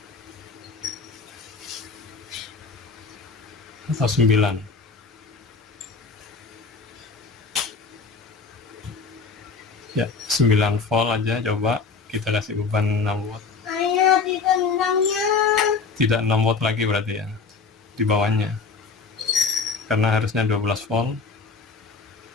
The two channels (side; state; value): right; quieter; 4.8 dB